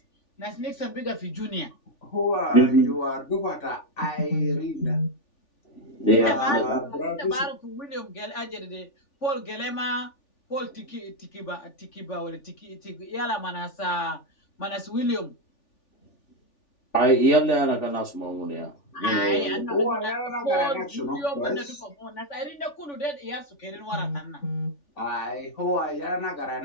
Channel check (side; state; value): right; late; 3.4 ms